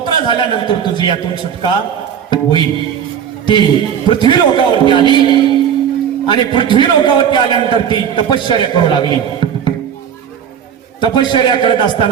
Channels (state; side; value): quieter; left; 8.4 dB